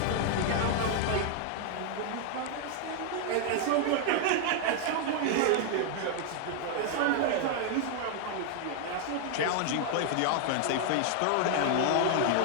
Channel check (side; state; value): both; different; correlation 0.00